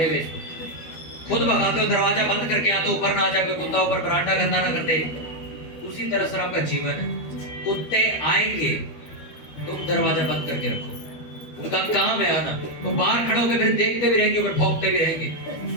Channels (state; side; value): late; right; 12 ms